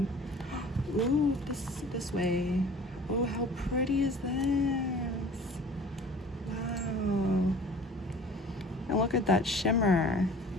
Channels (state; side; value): normal; both; correlation 0.46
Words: Ooh, this way. Oh, how pretty is this? Wow. And look at that shimmer.